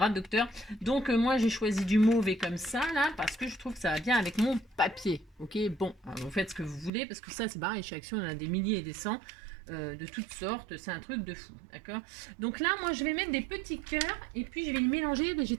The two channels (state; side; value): drops out; left; at 6.9 s